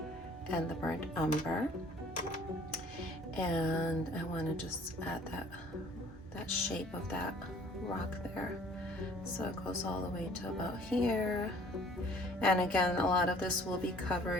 and the burnt umber, and I want to just add that shape of that rock there, so it goes all the way to about here. And again, a lot of this will be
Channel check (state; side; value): normal; both; correlation 0.55